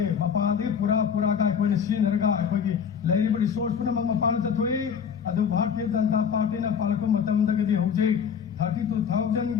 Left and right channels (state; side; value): quieter; right; 7.2 dB